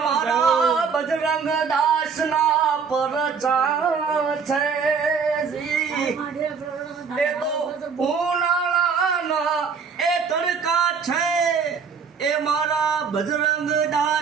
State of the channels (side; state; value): left; quieter; 5.9 dB